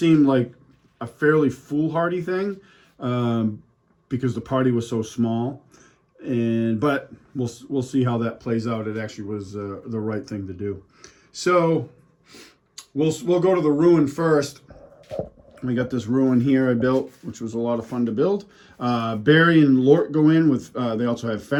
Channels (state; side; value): identical; both; correlation 1.00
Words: like a fairly foolhardy thing because the party was so small. But we'll see how that plays out. It actually was the right thing to do. So we'll go to the ruin first. We got this ruin here I built, which was a lot of fun to build. Barry and Lork go in with, they also have